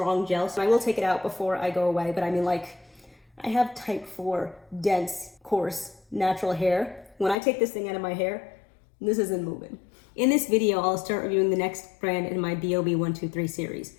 gel. So I will take it out before I go away, but I mean, like, I have type 4 dense, coarse, natural hair. When I take this thing out of my hair, this isn't moving. In this video, I'll start reviewing the next brand in my BoB123 series.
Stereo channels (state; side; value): drops out; right; at 7.4 s